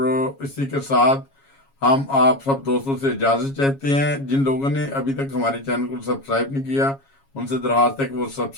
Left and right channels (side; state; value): right; late; 7.3 ms